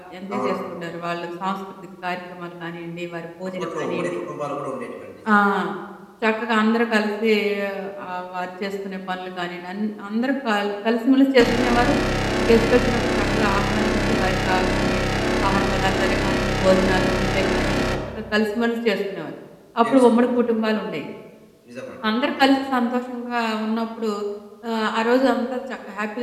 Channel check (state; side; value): identical; both; correlation 1.00